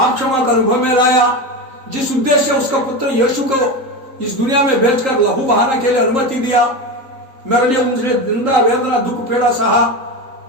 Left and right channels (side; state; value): left; late; 3.8 ms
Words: क्षमा का अनुभव में लाया, जिस उद्देश्य से उसका पुत्र यीशु को इस दुनिया में भेजकर लहू बहाना के लिए अनुमति दिया, मेरे लिए उनसे निंदा वेदना दुख पीड़ा सहा,